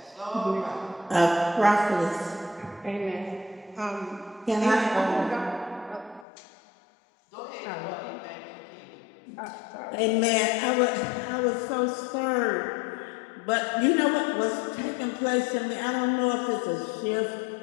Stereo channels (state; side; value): drops out; right; at 6.2 s